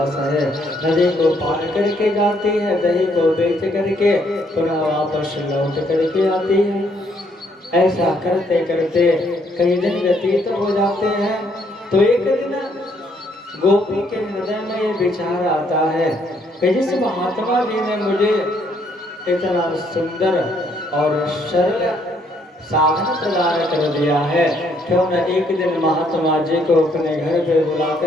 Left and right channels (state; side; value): normal; both; correlation 0.69